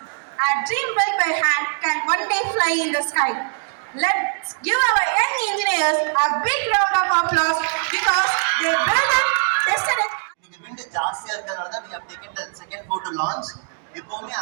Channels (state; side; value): silent; left; 64 dB below the other